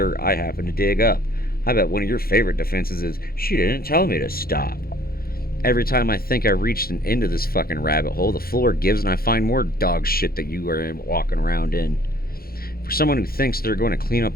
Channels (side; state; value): right; late; 0.44 ms